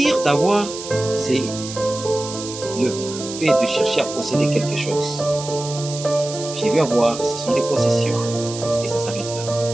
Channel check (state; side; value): noise; right; hiss, 10 dB below the sound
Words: d'avoir, c'est le fait de chercher à posséder quelque chose. Je veux avoir, ce sont les possessions, et ça s'arrête là.